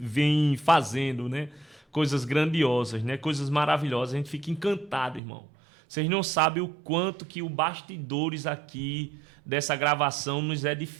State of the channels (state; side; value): drops out; left; at 5.2 s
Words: fazendo, né? Coisas grandiosas, né? Coisas maravilhosas, a gente fica encantado, irmão. Vocês não sabem o quanto que o bastidores aqui dessa gravação nos